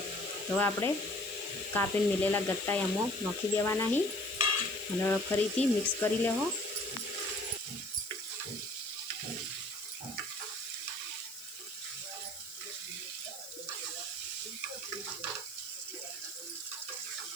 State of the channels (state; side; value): noise; left; hiss, 14 dB below the sound